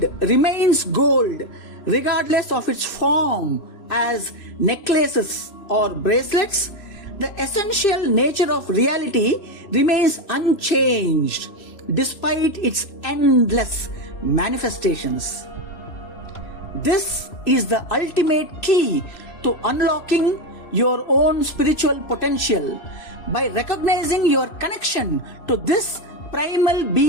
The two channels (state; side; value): late; right; 3.0 ms